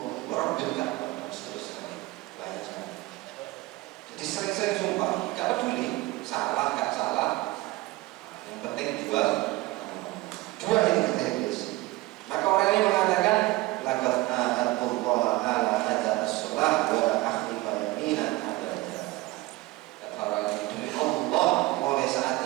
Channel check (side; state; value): left; quieter; 20.0 dB